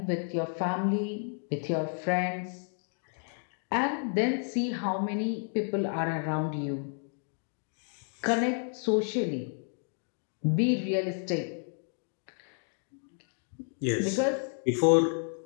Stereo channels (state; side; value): silent; right; 57 dB below the other